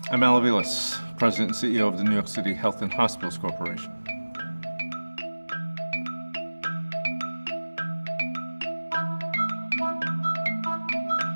I'm Aviles, President and CEO of the New York City Health and Hospitals Corporation.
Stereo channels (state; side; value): inverted; both; correlation -1.00